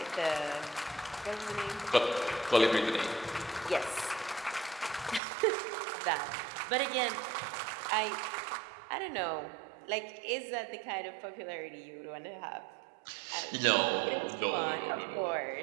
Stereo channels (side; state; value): left; drops out; at 5.2 s